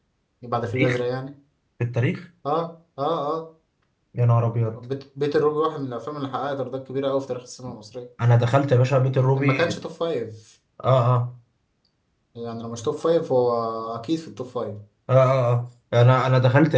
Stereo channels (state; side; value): identical; both; correlation 1.00